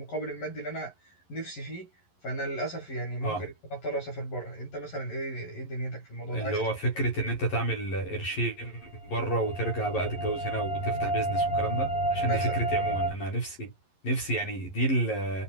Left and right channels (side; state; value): right; late; 11 ms